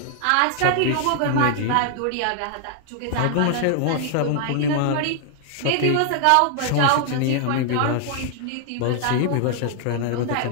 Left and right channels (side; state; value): both; different; correlation 0.00